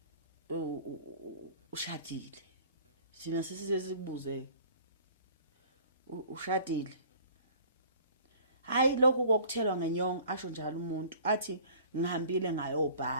ushadile sina sisizekubuze ushadile hayi lokhu kokuthelwa ngenyongo asho njalo umuntu athi ngihambile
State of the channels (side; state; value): both; inverted; correlation -0.49